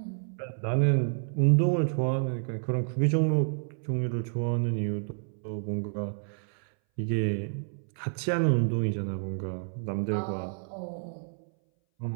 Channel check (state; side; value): silent; left; 58 dB below the other